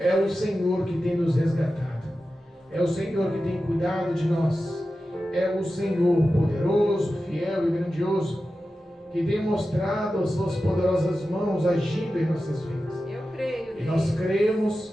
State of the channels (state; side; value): normal; both; correlation 0.93